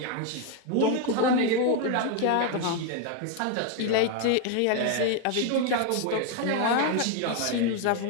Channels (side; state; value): both; different; correlation 0.01